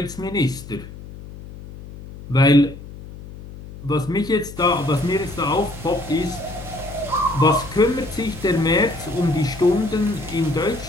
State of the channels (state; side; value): noise; left; hum, 14 dB below the sound